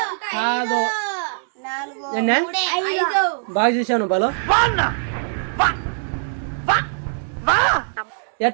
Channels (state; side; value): silent; left; digital silence